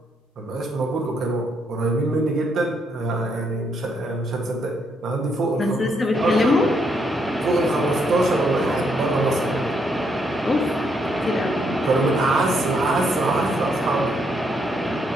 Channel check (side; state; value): both; normal; correlation 0.75